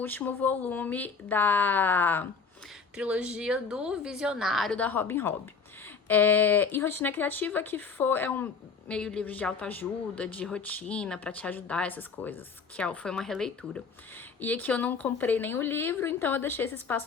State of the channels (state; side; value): quieter; right; 5.3 dB